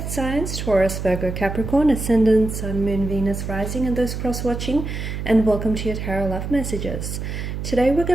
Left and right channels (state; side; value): noise; right; hum, 5 dB below the sound